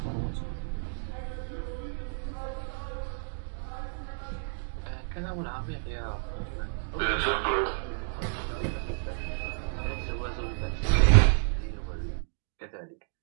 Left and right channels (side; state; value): left; silent; digital silence